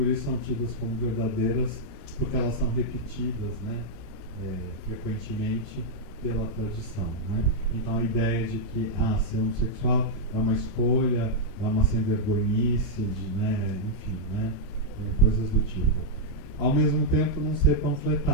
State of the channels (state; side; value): late; right; 29 ms